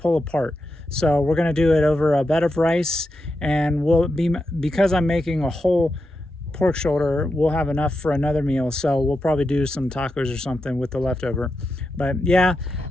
apart. So we're gonna do it over a bed of rice, and because I'm making a whole pork shoulder, we'll have enough for another meal. So we'll probably do some tacos or something with the leftover. But yeah,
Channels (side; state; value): both; normal; correlation 0.87